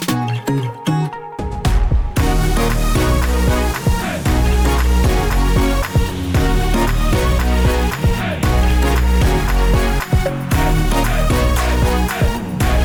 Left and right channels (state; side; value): identical; both; correlation 1.00